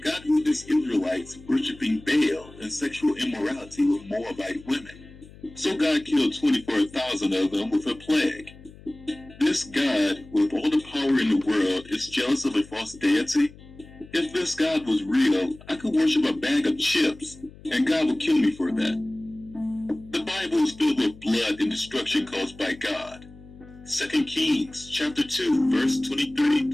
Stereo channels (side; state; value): left; noise; hum, 21 dB below the sound